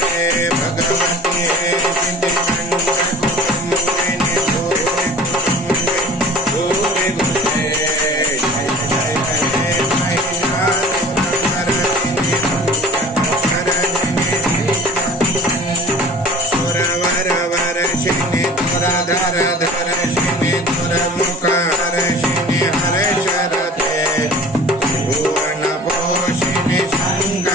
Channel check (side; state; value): both; normal; correlation 0.42